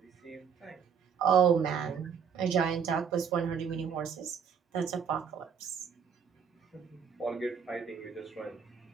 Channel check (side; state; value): left; quieter; 7.0 dB